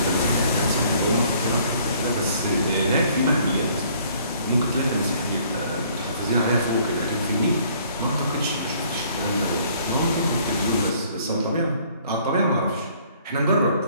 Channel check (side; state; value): both; inverted; correlation -0.60